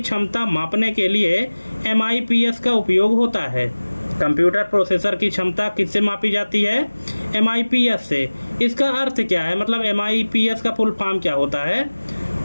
मापने के लिए MIPS का उपयोग होता है। कंप्यूटर प्रोसेसर की क्षमता किससे मापी जाती है? MIPS से। इसका अर्थ क्या है, मतलब MIPS का फुल फॉर्म क्या होता है?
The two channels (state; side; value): inverted; both; correlation -1.00